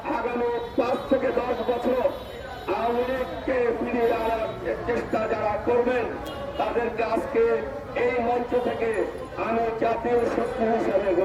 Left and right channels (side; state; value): both; identical; correlation 1.00